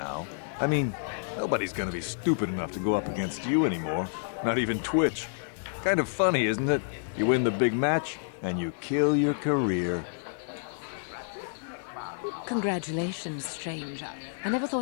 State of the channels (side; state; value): right; silent; digital silence